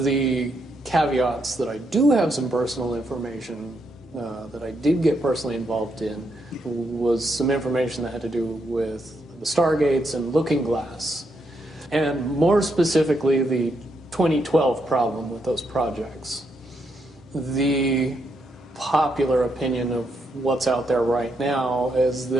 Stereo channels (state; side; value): normal; both; correlation 0.79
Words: the caveats that I do have some personal information that I did get personally involved in was some information that had to do with the Stargates and Looking Glass, and more specifically the 2012 problem with those projects. The popular opinion of what's out there right now is